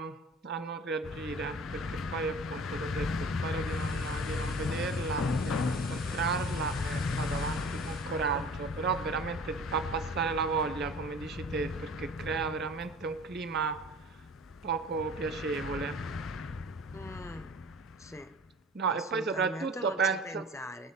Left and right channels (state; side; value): normal; both; correlation 0.43